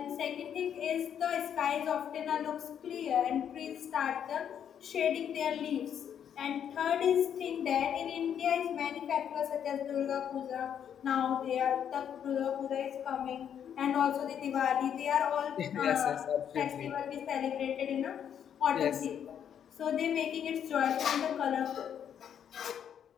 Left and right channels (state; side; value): quieter; right; 8.8 dB